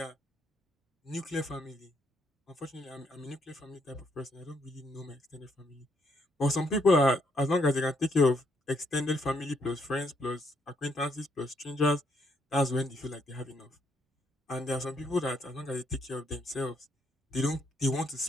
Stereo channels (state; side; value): normal; both; correlation 0.73